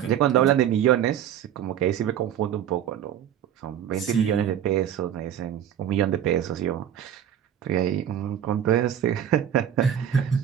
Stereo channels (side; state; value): left; quieter; 9.8 dB